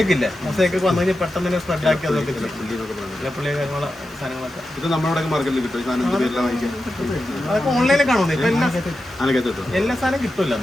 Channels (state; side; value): noise; right; hiss, 26 dB below the sound